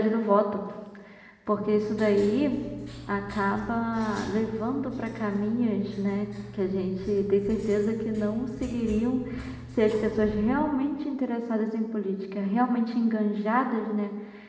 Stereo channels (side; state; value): both; identical; correlation 1.00